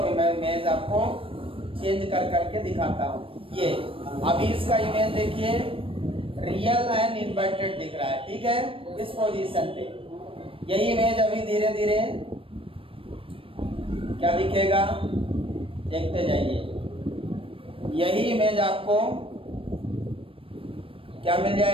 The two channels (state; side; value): late; left; 0.26 ms